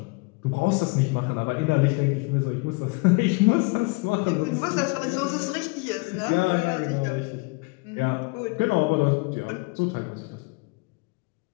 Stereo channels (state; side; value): quieter; right; 28.7 dB